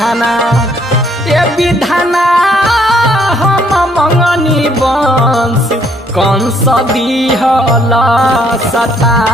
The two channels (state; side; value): normal; both; correlation 0.67